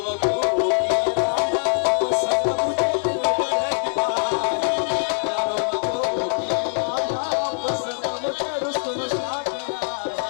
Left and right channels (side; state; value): right; silent; digital silence